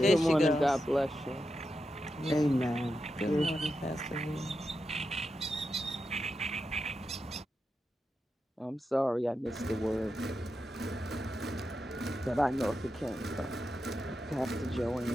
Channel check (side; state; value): both; normal; correlation 0.88